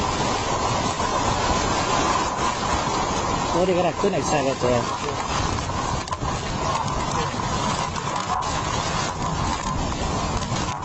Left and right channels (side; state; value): both; identical; correlation 1.00